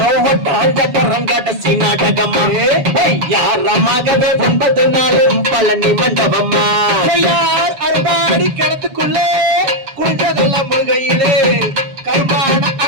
ஒட்டாஞ்சரங்காட்ட நாடகம்மா யாரமாகவே 9 நாளும் பழனி மண்டபம்மா அறுபாடி கிணத்துக்குள்ளே குடிச்சதெல்லாம் முழுகையிலே கருப்பான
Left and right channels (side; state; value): left; late; 6.9 ms